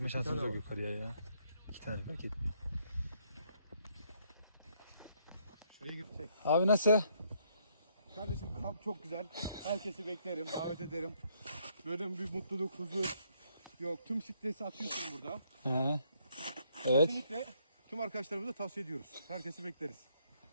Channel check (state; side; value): inverted; both; correlation -0.70